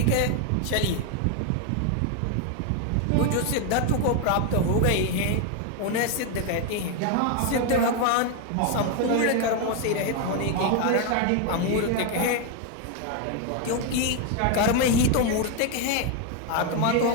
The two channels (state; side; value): different; both; correlation 0.01